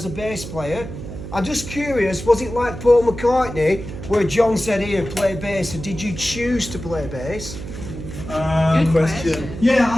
a bass player. I'm just curious, was it like Paul McCartney, where John said, "Ian, play bass," and did you choose to play bass? Good question.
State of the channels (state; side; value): noise; right; hum, 10 dB below the sound